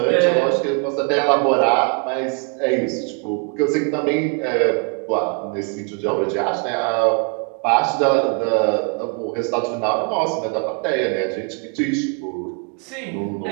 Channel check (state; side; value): quieter; left; 36.7 dB